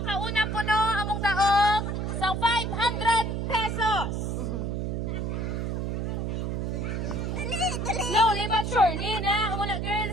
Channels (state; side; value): noise; right; hum, 1 dB below the sound